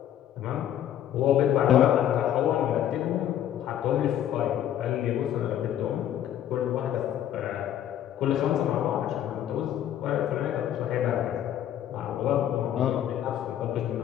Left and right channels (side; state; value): right; quieter; 10.9 dB